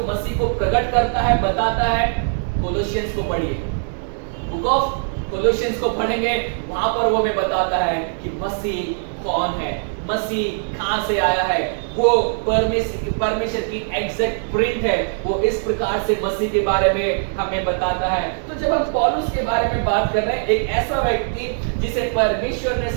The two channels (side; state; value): left; silent; digital silence